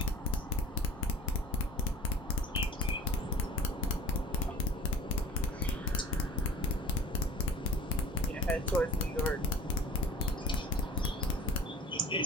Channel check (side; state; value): both; normal; correlation 0.45